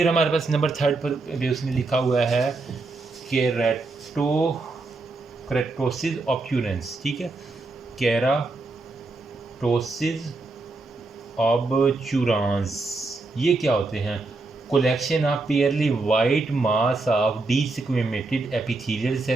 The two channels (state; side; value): quieter; left; 3.4 dB